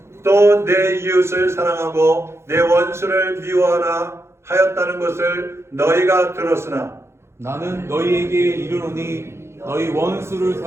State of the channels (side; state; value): left; late; 0.13 ms